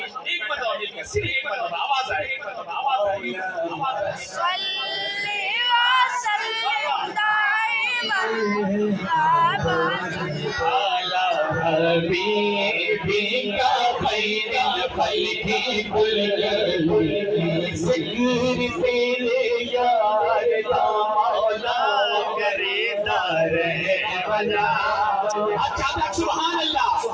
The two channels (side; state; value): both; identical; correlation 1.00